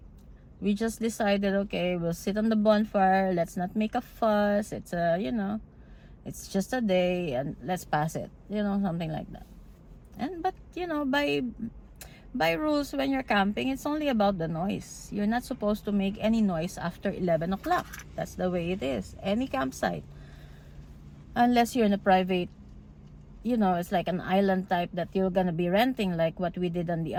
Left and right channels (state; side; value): identical; both; correlation 1.00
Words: we just decided, okay, we'll sit on the bonfire, let's not make a fuss, it's you know, it's just a day, and let's pass it, you know, something like that. But you know, by rules, when you're camping, it's only about the noise. You're not supposed to make any noise after 11 o'clock. That's the way it is, any campsite, unless you're in a private, you know, it's like an island type that you're gonna be renting, like what we did on the